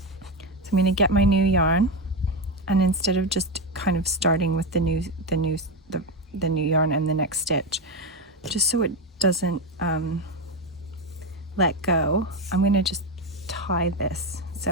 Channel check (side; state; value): both; normal; correlation 0.12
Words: So I'm going to get my new yarn, and instead of just kind of starting with the new yarn and the next stitch, just so it doesn't let go, I'm going to just tie this.